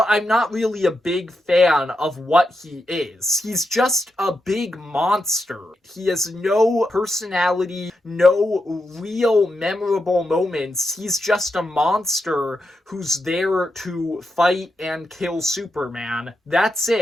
I'm not really a big fan of what he is. He's just a big monster. He has no personality, no real memorable moments. He's just a monster who's there to fight and kill Superman. That's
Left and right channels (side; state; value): both; normal; correlation 0.86